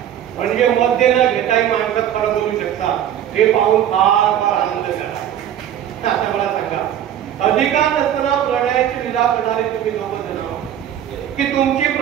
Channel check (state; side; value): quieter; left; 10.5 dB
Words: म्हणजे मध्ये न घेताही माणसात खरं बोलू शकता हे पाहून फार फार आनंद झाला. आता मला सांगा, अधिकार नसताना प्रणयाची लीला करणारे तुम्ही दोघं जण की तुमची